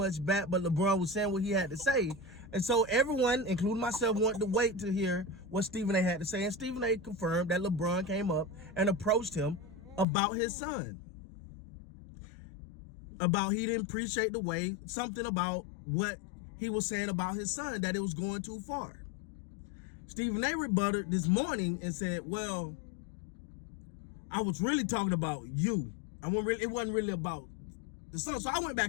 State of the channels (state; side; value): drops out; right; at 10.1 s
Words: back, but LeBron was saying what he had to say. And so everyone, including myself, wanted to wait to hear what Stephen A. had to say. And Stephen A. confirmed that LeBron came up and approached him about his son. About he didn't appreciate the way, something about what he was saying about his son, that it was going too far. Stephen A. rebutted this morning and said, well, I was really talking about you. It wasn't really about the son. So I went